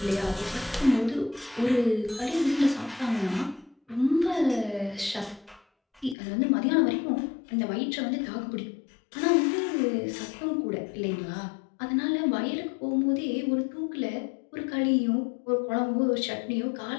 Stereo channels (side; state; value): right; drops out; at 6.2 s